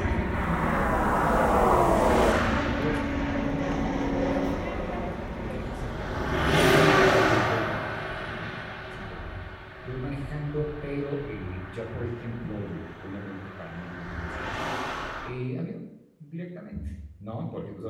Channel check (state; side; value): identical; both; correlation 1.00